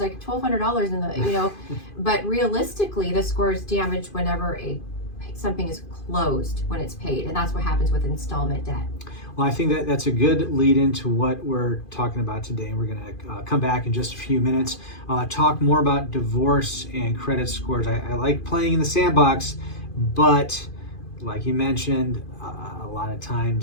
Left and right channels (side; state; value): right; late; 2.5 ms